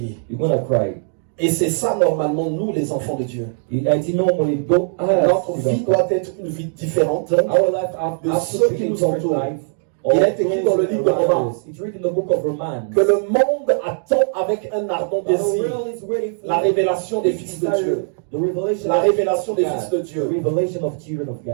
Et c'est ça normalement nous les enfants de Dieu. Notre vie doit être une vie différente de ceux qui nous entourent. Il est écrit dans le livre de Romains que le monde attend avec un ardent désir la révélation des fils de Dieu. La révélation des fils de Dieu.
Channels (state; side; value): silent; left; digital silence